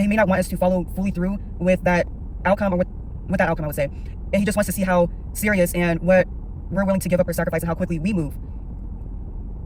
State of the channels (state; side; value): identical; both; correlation 1.00